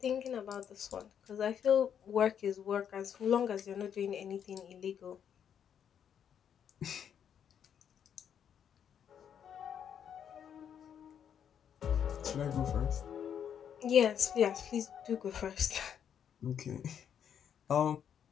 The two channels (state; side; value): quieter; right; 8.5 dB